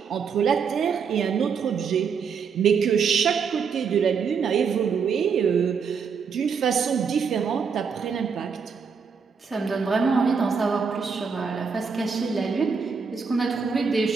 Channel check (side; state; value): left; quieter; 6.0 dB